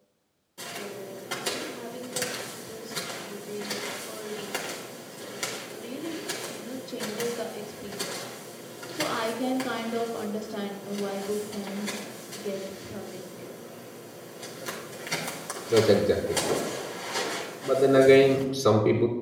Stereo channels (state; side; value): identical; both; correlation 1.00